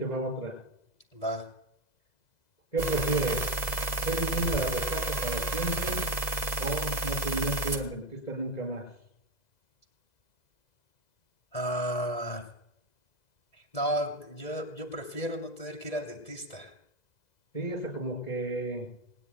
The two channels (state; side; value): late; right; 2.0 ms